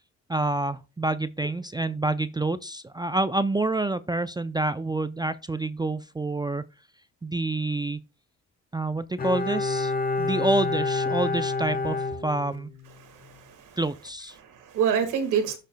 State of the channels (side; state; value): both; normal; correlation 0.51